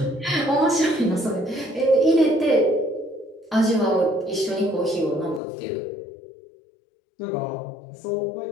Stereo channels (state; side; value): drops out; right; at 5.4 s